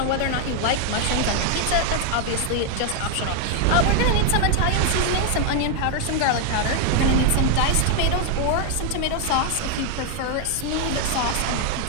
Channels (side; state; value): both; different; correlation 0.01